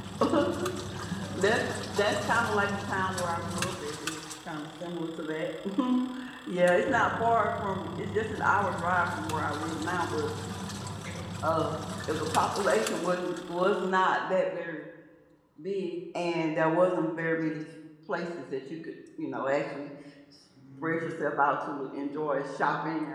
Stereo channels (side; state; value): both; identical; correlation 1.00